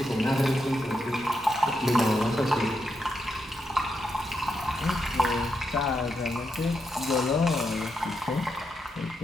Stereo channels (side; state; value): both; normal; correlation 0.83